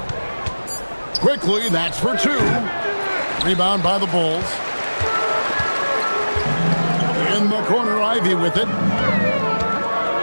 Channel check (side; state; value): both; inverted; correlation -1.00